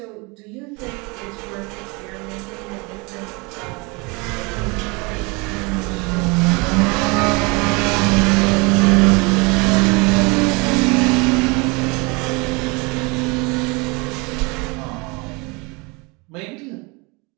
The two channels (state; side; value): quieter; left; 28.0 dB